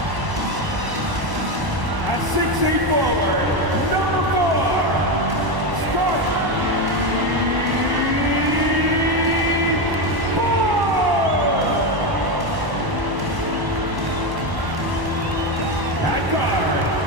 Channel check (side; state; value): left; late; 1.0 ms